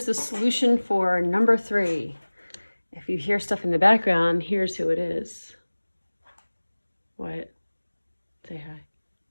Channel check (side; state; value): both; inverted; correlation -1.00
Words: the solution for number 3. If you hear stuff in the background, here's who it is. What? Say hi.